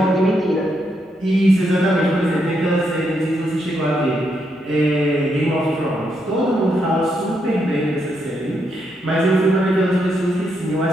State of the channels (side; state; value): both; normal; correlation 0.79